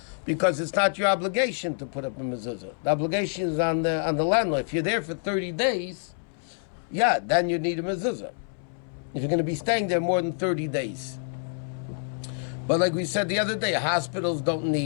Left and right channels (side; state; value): right; silent; 60 dB below the other